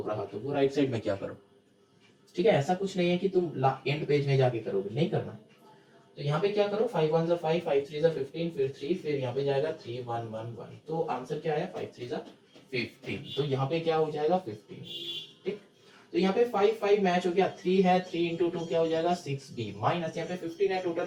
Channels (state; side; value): identical; both; correlation 1.00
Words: रहा तो वो राइट साइड में क्या करो। ठीक है, ऐसा कुछ नहीं है कि तुम एंड पेज में जाके करोगे, नहीं करना। तो यहाँ पे क्या करो 5 1 5 5 3 15 फिर 3 फिर यहाँ पे जाएगा 3 1 1 1, तो आंसर क्या आया 5 3 15, तो यहाँ पे क्या हो जाएगा 15। ठीक, तो यहाँ पे 5 5 मैच हो गया, 3 है 3 इंटू 2 क्या हो जाएगा 6b, माइनस यहाँ पे 15 है